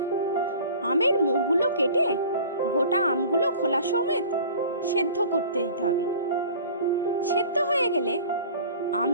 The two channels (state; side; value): inverted; both; correlation -0.44